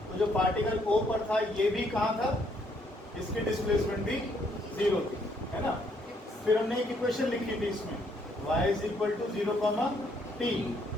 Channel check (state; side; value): normal; both; correlation 0.69